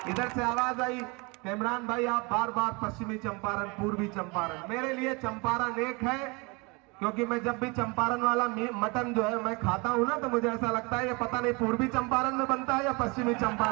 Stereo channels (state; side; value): quieter; left; 28.2 dB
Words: इधर से आवाज आई कि इमरान भाई आप बार बार पश्चिमी चंपारण, पूर्वी चंपारण। मेरे लिए चंपारण एक है, क्योंकि मैं जब भी चंपारण वाला मटन जो है मैं खाता हूं ना तो मुझे ऐसा लगता है ये पता नहीं पूर्वी चंपारण में बनता है या पश्चिमी